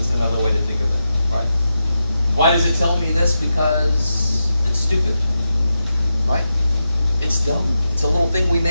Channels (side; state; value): both; inverted; correlation -0.88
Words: another way to think of it, right? Why does it tell me this? Because it's stupid, right? It's dumb. It's a little thing we